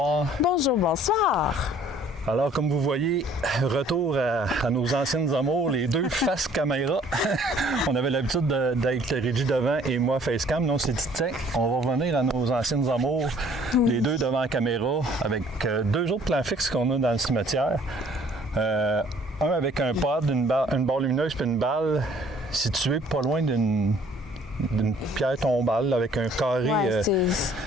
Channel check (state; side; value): normal; both; correlation 0.57